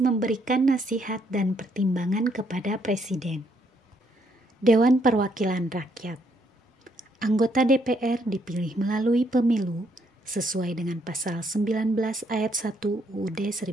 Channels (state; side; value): normal; both; correlation 0.72